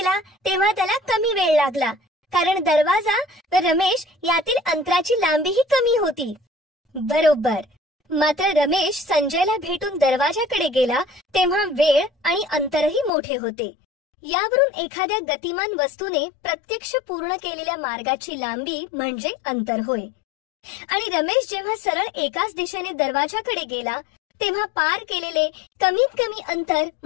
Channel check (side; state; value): right; drops out; at 13.1 s